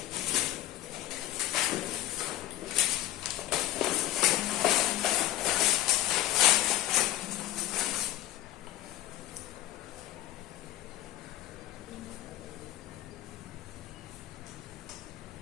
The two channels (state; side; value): quieter; right; 14.8 dB